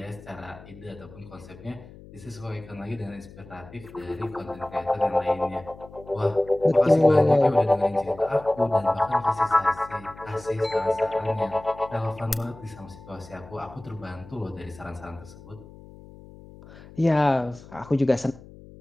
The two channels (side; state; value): left; noise; hum, 19 dB below the sound